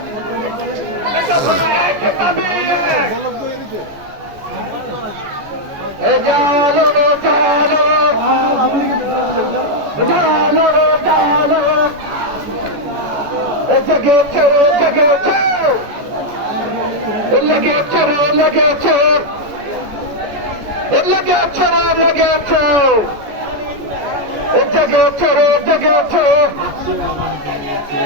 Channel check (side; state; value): left; late; 14 ms